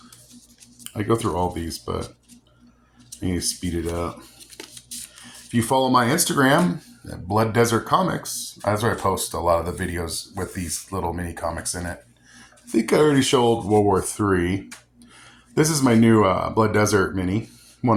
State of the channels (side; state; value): both; identical; correlation 1.00